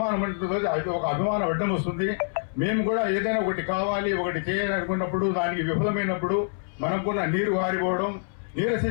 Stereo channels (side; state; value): right; silent; 61 dB below the other